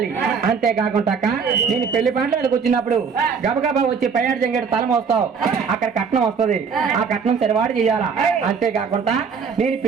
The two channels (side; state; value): left; quieter; 6.0 dB